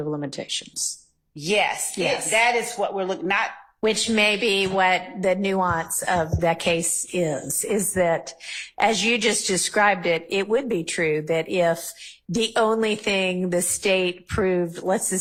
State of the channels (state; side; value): identical; both; correlation 1.00